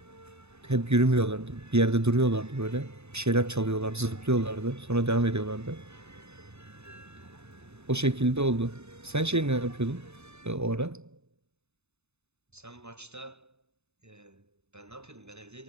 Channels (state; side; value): late; left; 0.81 ms